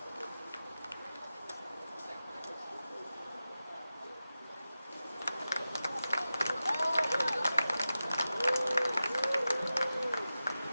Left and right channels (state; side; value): inverted; both; correlation -0.94